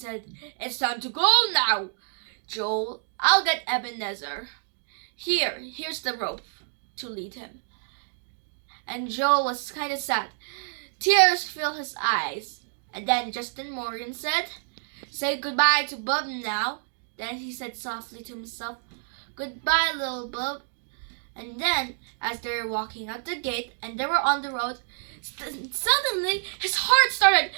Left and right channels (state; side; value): silent; left; digital silence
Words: "It's time to go now. Joel, I'll get Ebenezer. Here's the rope to lead him." And Joel was kind of sad. Tears filled his eyes. And then Justin Morgan said, "Say goodbye to Bub now." Then he said softly to himself, "Goodbye, Little Bub." And then, as they were walking out the gate and they were on the road, suddenly his heart started